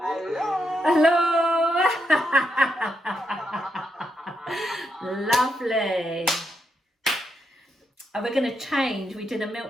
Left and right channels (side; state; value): both; normal; correlation 0.82